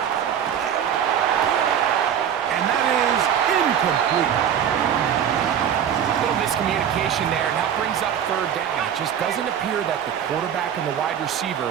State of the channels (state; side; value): quieter; left; 9.0 dB